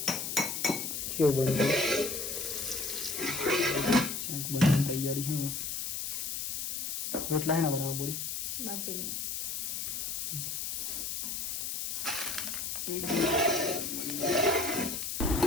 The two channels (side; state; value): left; noise; hiss, 3 dB below the sound